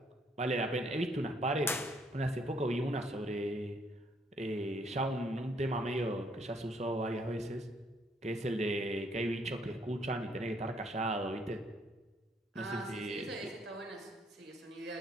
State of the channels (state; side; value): normal; both; correlation 0.68